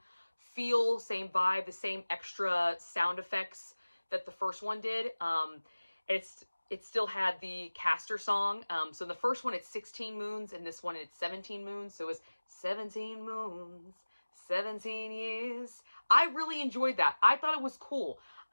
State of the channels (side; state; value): both; inverted; correlation -1.00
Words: feel, same vibe, the same extra sound effects that the first one did. It still had the Castor song. So in the first one, it's 16 moons, and this one, it's 17 moons. So it was 17 moons, 17 years. I really enjoyed that. I thought it was cool.